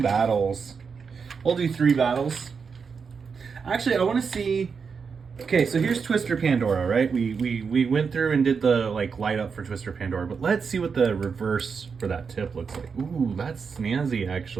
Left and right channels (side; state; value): left; quieter; 5.7 dB